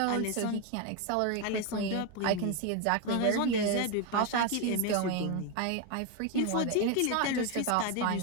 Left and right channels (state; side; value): different; both; correlation 0.02